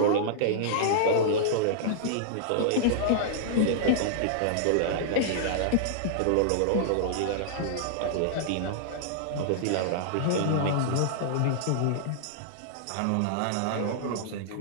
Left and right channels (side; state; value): both; different; correlation -0.02